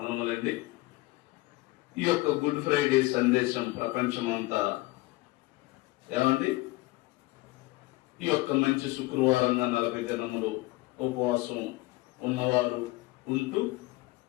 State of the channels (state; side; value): quieter; right; 21.0 dB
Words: ఈ యొక్క గుడ్ ఫ్రైడే సందేశం ప్రపంచమంతా ఏమండి ఈ యొక్క మంచి శుక్రవారంగా 40 దినములు ఉపవాసం ఉన్నవారు ఉంటూ